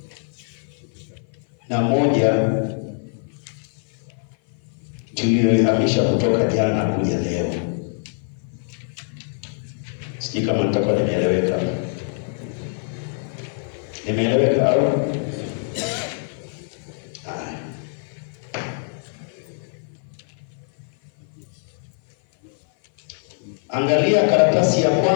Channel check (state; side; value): silent; right; 56 dB below the other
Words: na 1 tuliyoihamisha kutoka jana kuja leo. Sijui kama nitakuwa nimeeleweka. Nimeeleweka au? Angalia karatasi ya